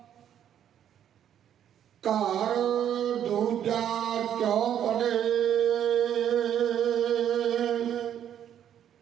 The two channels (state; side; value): quieter; left; 9.9 dB